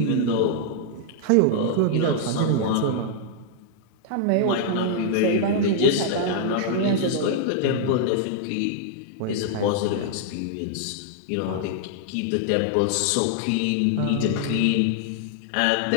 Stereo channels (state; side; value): different; both; correlation -0.01